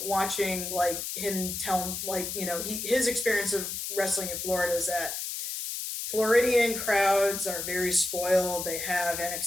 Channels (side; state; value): left; noise; hiss, 4 dB below the sound